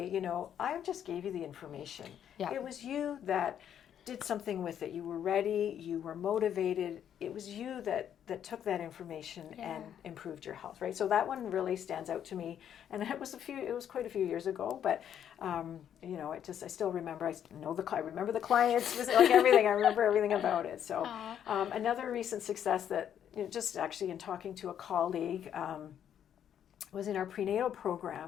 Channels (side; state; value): right; quieter; 9.5 dB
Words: I just gave you the information. It was you that did something with it. You were ready, you were motivated. It was you that took that information and improved your health, right? So that one really stands out to me. And it was quite a few years ago, but I still remember, I remember the clients, like everything, I remember everything about it. So another recent success that, just actually in talking to a colleague, was in our prenatal